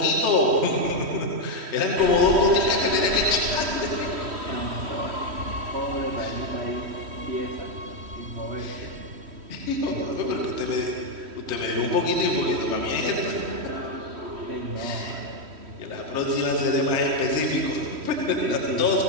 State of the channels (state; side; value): late; left; 3.1 ms